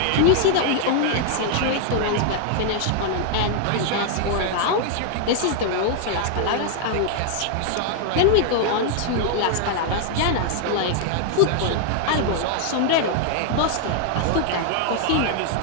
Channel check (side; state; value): both; different; correlation 0.00